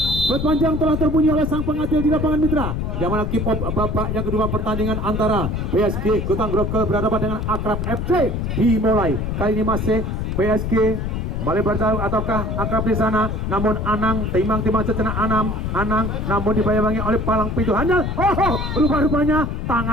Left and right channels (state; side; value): noise; left; rumble, 2 dB below the sound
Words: Peluit panjang telah terbunyi oleh sang pengadil di lapangan mitra yang mana kick off babak yang kedua pertandingan antara PSG Kota Grogol berhadapan dengan Akrab FC dimulai. Kali ini masih PSG melebar jauh ataukah Akrab di sana, namun Anang timang sejenak Anang namun dibayangi oleh palang pintu handal. Rupa-rupanya